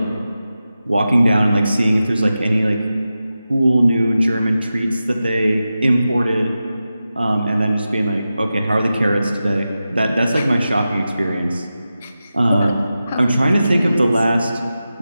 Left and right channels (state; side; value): inverted; both; correlation -0.92